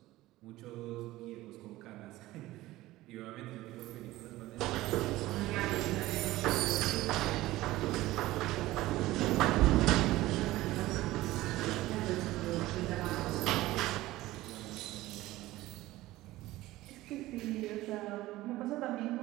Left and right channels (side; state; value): left; quieter; 17.3 dB